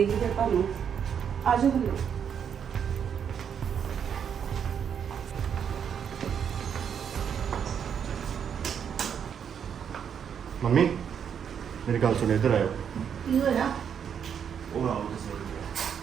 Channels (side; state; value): left; quieter; 7.9 dB